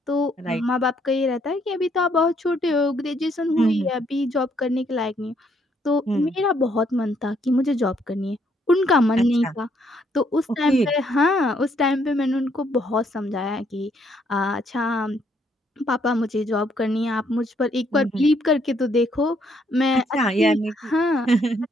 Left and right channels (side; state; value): both; normal; correlation 0.70